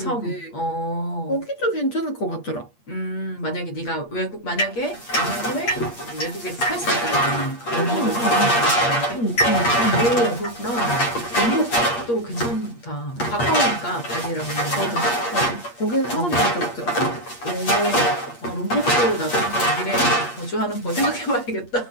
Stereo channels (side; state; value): right; late; 8.5 ms